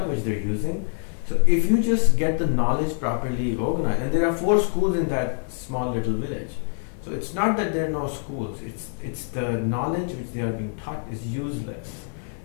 which they're using. So if you just get the knowledge properly organized, and there are 4 schools in that small little village. So it's not that there are no schools, it's the knowledge which they are being taught is useless.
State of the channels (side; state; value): right; silent; 59 dB below the other